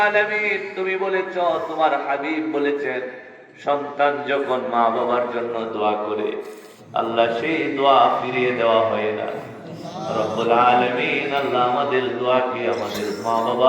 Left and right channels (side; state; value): both; identical; correlation 1.00